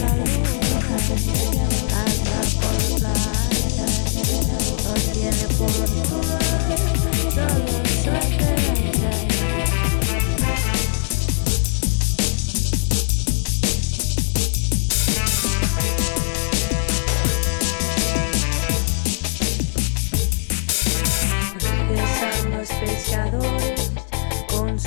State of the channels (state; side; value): silent; right; 65 dB below the other